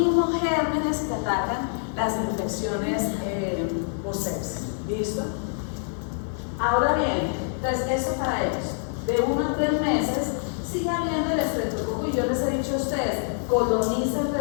gérmenes que atacan las infecciones por sepsis. ¿Listo? Ahora bien, entonces eso para ellos, de 1 a 3 meses, sigue habiendo el estreptococo y yo les he dicho a ustedes, coloniza el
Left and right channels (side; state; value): right; silent; digital silence